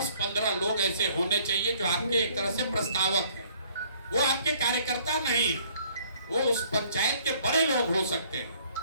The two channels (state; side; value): inverted; both; correlation -0.60